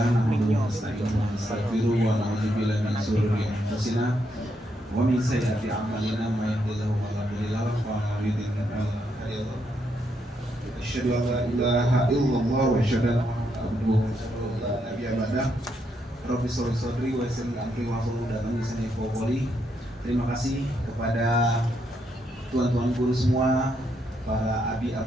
nahmaduhu wa nasta'inuhu wa nastaghfiruh wa na'udzu billahi min shururi anfusina wa min sayyiati a'malina may yahdihillahu fala mudilla lahu wa may yudlil fala hadiya lahu. Asyhadu an la ilaha illallah wa asyhadu anna Muhammadan abduhu wa rasuluhu la nabiyya ba'dah. Rabbi sholli sadri wa yassir li amri wa hlul 'uqdatam min lisani yafqahu qawli. Terima kasih kepada tuan-tuan guru semua, para abi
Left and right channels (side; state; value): both; normal; correlation 0.78